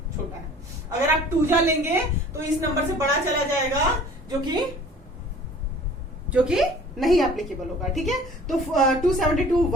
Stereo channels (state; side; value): normal; both; correlation 0.48